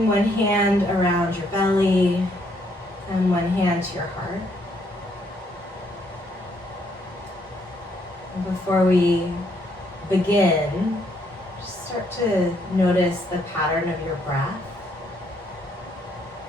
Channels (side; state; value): both; normal; correlation 0.71